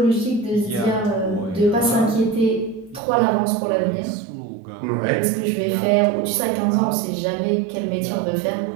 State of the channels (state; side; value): drops out; left; at 3.0 s